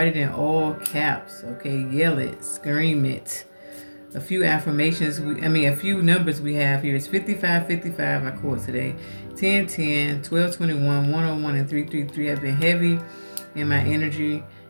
it in all caps. Okay, yell it, scream it. A few affirmations, a few numbers we have here is 55, 55, I quote today. 10, 10, 12, 21, 101, and 333 have been heavy in my energy.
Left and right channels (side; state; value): both; inverted; correlation -1.00